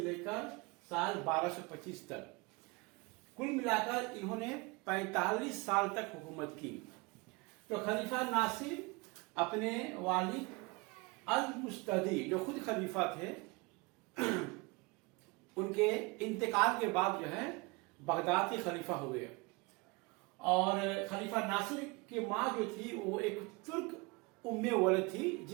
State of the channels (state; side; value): quieter; left; 26.4 dB